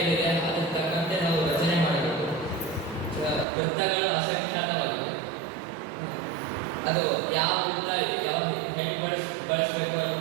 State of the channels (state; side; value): drops out; left; at 3.5 s